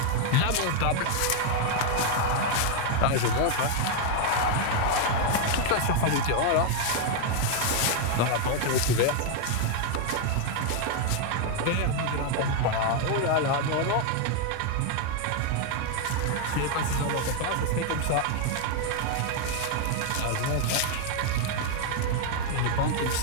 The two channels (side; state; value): both; different; correlation 0.00